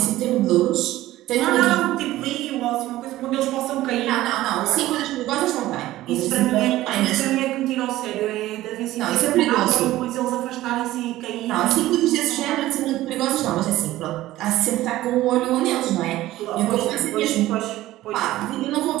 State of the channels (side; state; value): left; quieter; 15.8 dB